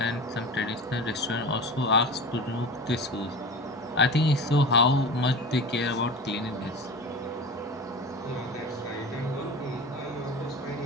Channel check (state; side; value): normal; both; correlation 0.31